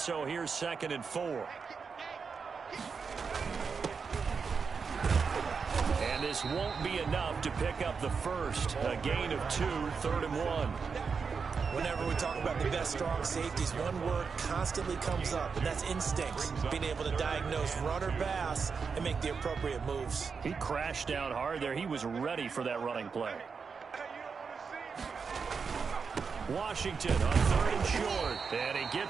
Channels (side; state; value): left; quieter; 5.5 dB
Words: here's 2nd and 4. And this won't be enough to pick up the first. A gain of 2, 3rd and 1. Whenever we talk about the best strong safeties, one word constantly comes up, and that's instincts. Being able to diagnose run or pass and make the appropriate moves. He crashed down hard there. He was ready for that running play. Washington on 3rd and short. And he